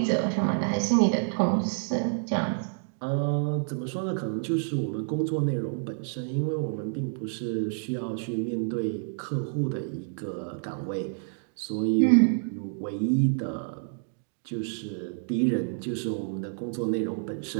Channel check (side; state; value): left; silent; digital silence